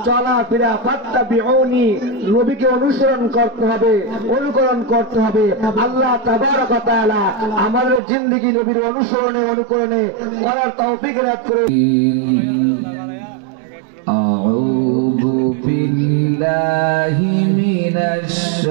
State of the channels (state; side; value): drops out; left; at 8.0 s